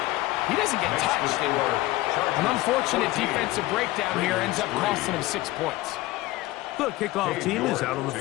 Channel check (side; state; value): right; quieter; 18.4 dB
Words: he doesn't get touched. An unfortunate defensive breakdown here ends up costing him 6 points. The kickoff team is out on the